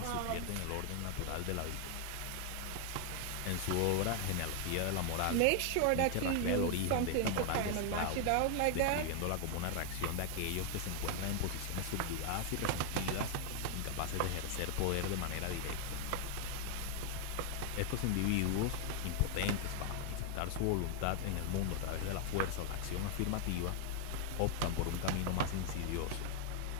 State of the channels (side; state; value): both; different; correlation 0.00